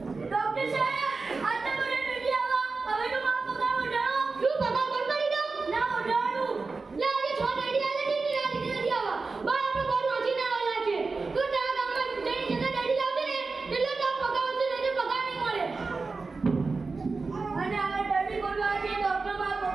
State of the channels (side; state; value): left; quieter; 4.1 dB